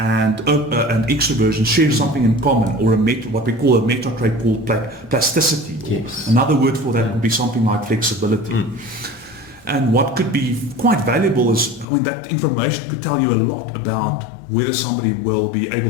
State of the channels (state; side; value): drops out; right; at 11.9 s